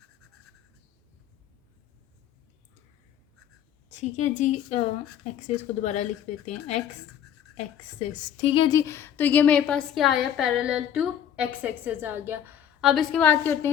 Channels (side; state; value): right; quieter; 9.6 dB